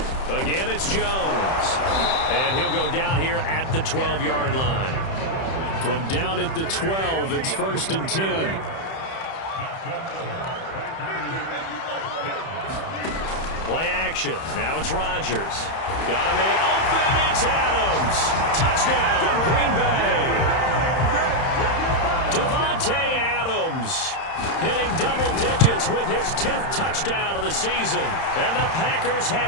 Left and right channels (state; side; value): late; right; 31 ms